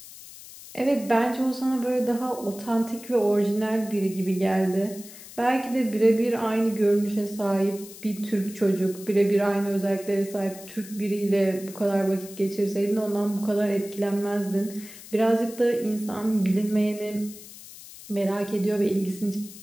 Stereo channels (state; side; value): noise; left; hiss, 16 dB below the sound